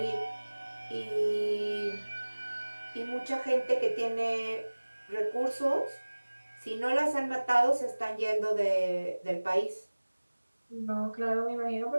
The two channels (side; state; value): both; inverted; correlation -1.00